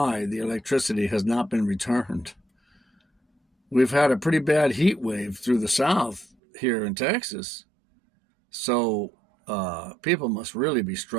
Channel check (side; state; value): left; drops out; at 6.4 s